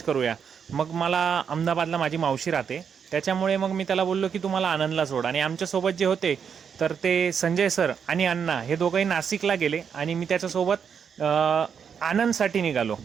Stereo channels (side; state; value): left; quieter; 7.1 dB